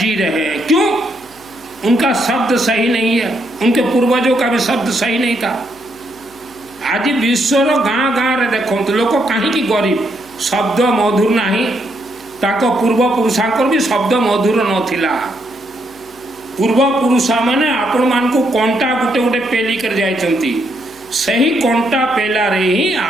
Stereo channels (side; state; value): left; noise; hum, 28 dB below the sound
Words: रहे हैं। क्यों? उनका शब्द सही नहीं है, उनके पूर्वजों का भी शब्द सही नहीं था। आज विश्वर गाँ गाँ रे देखो तो लोक कहीं गरीब शब्द मधुर नहीं, ताको पूर्वपुरुषांकर भी शब्द मधुर नथिला। पूर्वपुरुष माने आपण मान को कंटा गुटे गुटे पेली कर जाइछंती, सही कंटा पेला रे ही